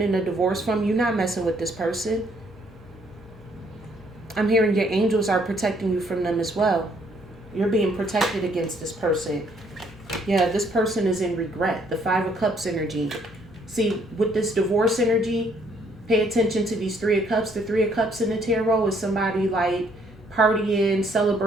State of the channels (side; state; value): both; normal; correlation 0.67